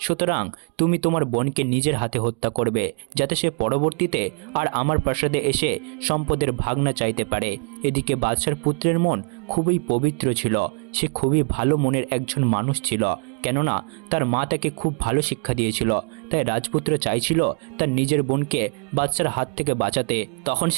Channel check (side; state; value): left; quieter; 39.2 dB